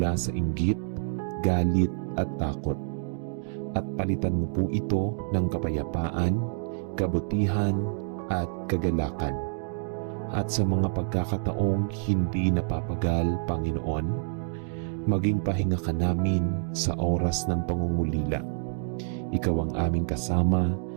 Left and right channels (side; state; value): left; silent; digital silence